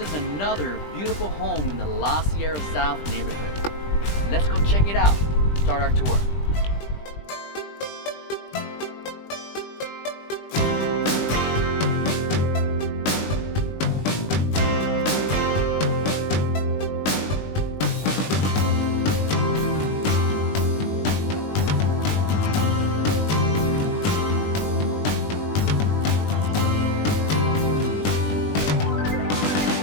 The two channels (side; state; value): right; late; 20 ms